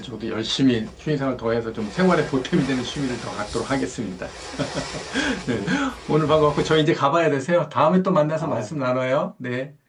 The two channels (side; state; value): both; identical; correlation 1.00